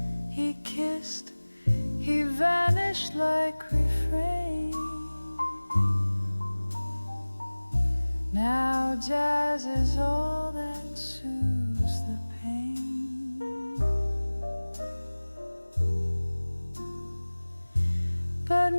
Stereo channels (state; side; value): inverted; both; correlation -1.00